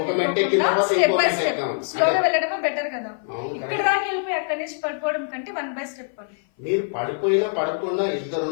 ఒక మెట్టు ఎక్కిన తర్వాత ఇంకో మెట్టు ఎక్కుదామని స్లోగా వెళ్ళడమే బెటర్ కదా. అవును, కరెక్ట్. దాకా వెళ్ళిపోయి అక్కడి నుంచి పడిపోవడం కంటే 1 by step అని. మీరు పడిపోయినా పడకుండా ఇద్దరు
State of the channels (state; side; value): silent; right; 57 dB below the other